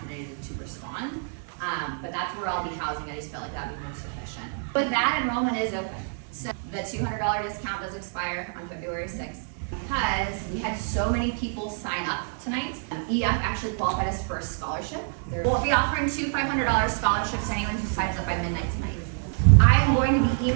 today to respond. But that's where I'll be housing. I just felt like that would be most efficient. But that enrollment is open. So the $200 discount does expire on February 6th. Because we had so many people sign up tonight, EF actually qualified us for a scholarship. We'll be offering 2 $500 scholarships to anyone who signs up by midnight tonight. I'm going to be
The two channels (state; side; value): silent; left; 60 dB below the other